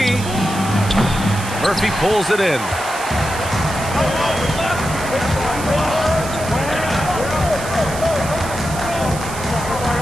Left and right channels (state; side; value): noise; right; hiss, 12 dB below the sound